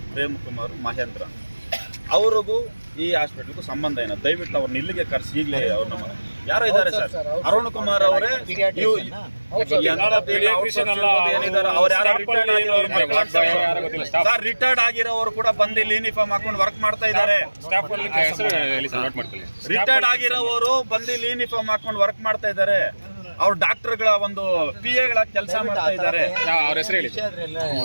ಪ್ರೇಮ್ ಕುಮಾರ್, ಮಹೇಂದ್ರ. ಅವ್ರಿಗೂ ಈ ಹಾಸ್ಪಿಟಲ್ಗೂ ಸಂಬಂಧ ಏನೋ ದಯವಿಟ್ಟು ಅವ್ರನ್ನ ಇಲ್ಲಿಗೆ ಕರೆಸಿ ಈಗಲೇ ಅವ್ರ ನಮ್ಮ ಯಾರೋ ಇದ್ದಾರೆ ಸರ್. ಅರುಣ್ ಕುಮಾರ್ ಅವರೇ ರಿಟೈರ್ಡ್ ಆಗಿರೋರು ಕೂಡ ಬಂದು ಇಲ್ಲಿ ಯೂನಿಫಾರ್ಮ್ ಹಾಕೊಂಡು ವರ್ಕ್ ಮಾಡ್ತಾ ಇದ್ದಾರೆ. ರಿಟೈರ್ಡ್ ಆಗಿರೋರು ಬಂದು ಇಲ್ಲಿ ಯೂನಿಫಾರ್ಮ್ ಹಾಕೊಂಡು ವರ್ಕ್ ಮಾಡ್ತಾ ಇದ್ದಾರೆ. ಅವ್ರ ಡಾಕ್ಟರ್ಗಳ ಒಂದು PA ಗಳ ಕೆಲಸ ಮಾಡ್ತಾ ಇದ್ದಾರೆ.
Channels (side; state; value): both; inverted; correlation -1.00